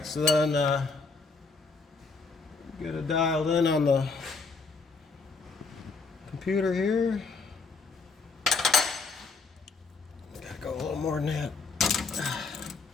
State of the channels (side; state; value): right; quieter; 4.3 dB